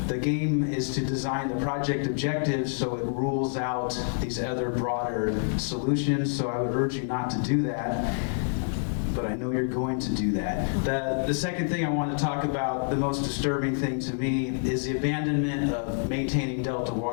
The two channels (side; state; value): right; silent; digital silence